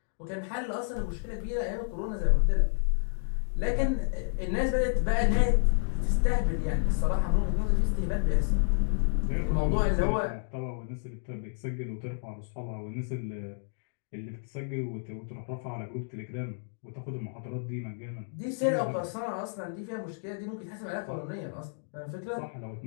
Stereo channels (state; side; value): silent; right; digital silence